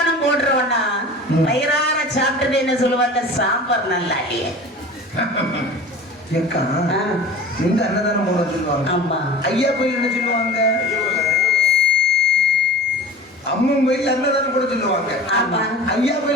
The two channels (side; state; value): both; normal; correlation 0.37